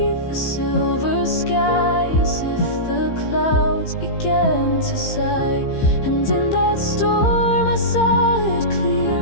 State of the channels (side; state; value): right; late; 15 ms